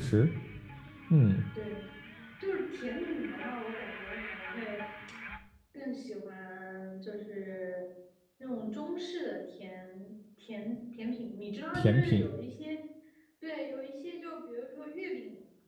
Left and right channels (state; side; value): identical; both; correlation 1.00